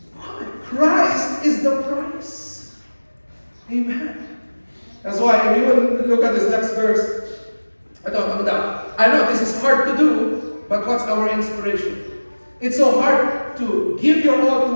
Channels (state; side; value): inverted; both; correlation -1.00